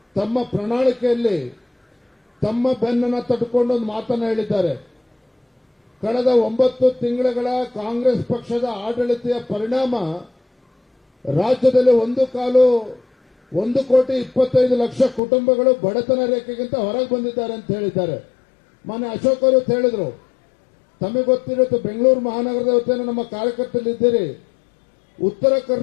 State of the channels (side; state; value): right; drops out; at 15.2 s